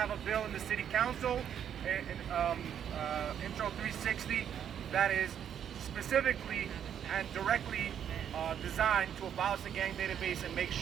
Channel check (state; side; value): quieter; left; 9.0 dB